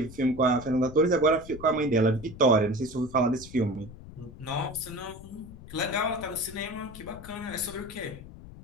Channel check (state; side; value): noise; left; rumble, 16 dB below the sound